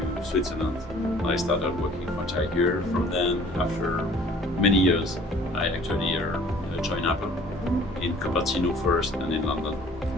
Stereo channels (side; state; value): both; normal; correlation 0.52